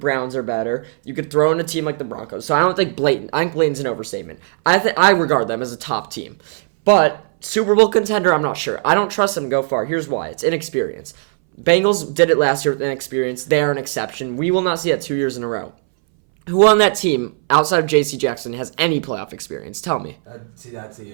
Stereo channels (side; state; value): left; silent; 64 dB below the other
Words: are better. You could throw in a team like the Broncos. So I don't think blatant. I think blatant's an overstatement. I regard them as a top team. But Super Bowl contender, I'm not sure. I don't trust them to go far. Here's why. It's inexperience. Bengals did it last year with inexperience. They are an exception. We will not see that 2 years in a row. Who on that team, outside of J.C. Jackson, has any playoff experience? Tell me. That's the